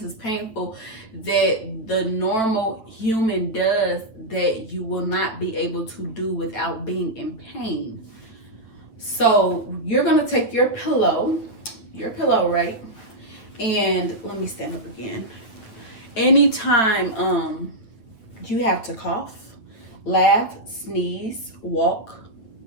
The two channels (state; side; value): late; right; 9.0 ms